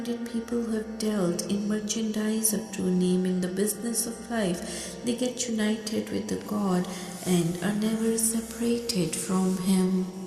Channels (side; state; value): both; identical; correlation 1.00